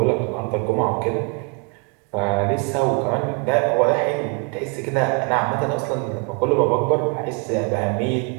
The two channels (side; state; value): left; quieter; 37.1 dB